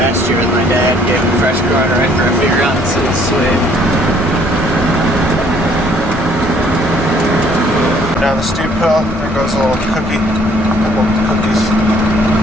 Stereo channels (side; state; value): both; normal; correlation 0.61